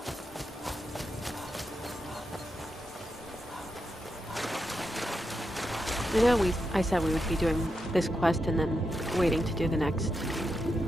I know I said we would be doing this quest and then waiting to do the next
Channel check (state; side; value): normal; both; correlation 0.86